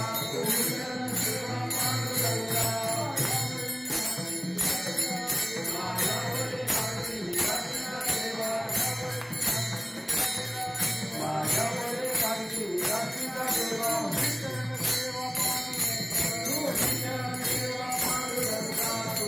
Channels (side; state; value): both; identical; correlation 1.00